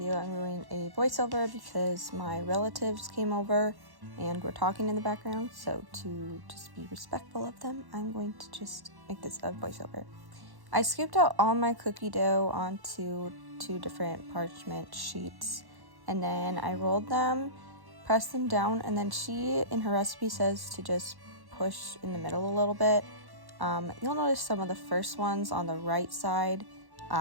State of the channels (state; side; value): late; left; 1.1 ms